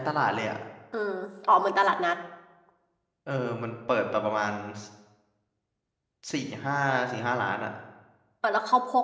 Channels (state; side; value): identical; both; correlation 1.00